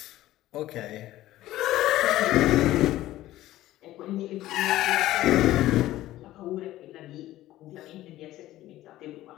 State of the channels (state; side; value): quieter; right; 15.1 dB